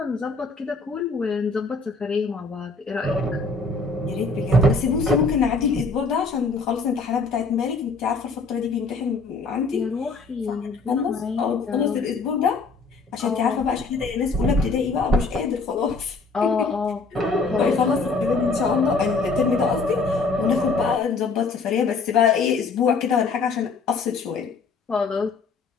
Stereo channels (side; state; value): right; quieter; 4.2 dB